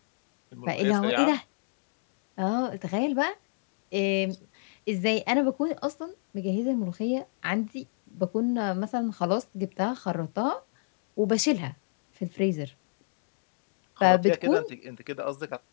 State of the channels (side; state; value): right; silent; digital silence